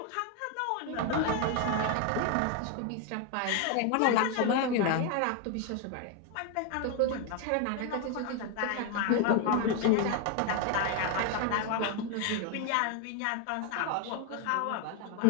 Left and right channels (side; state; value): both; different; correlation 0.01